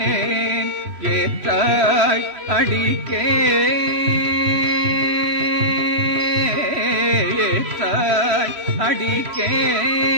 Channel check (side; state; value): left; late; 3.0 ms